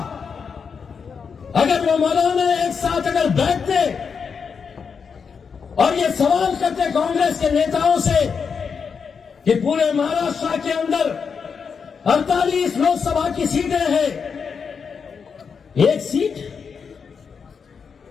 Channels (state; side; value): quieter; right; 6.0 dB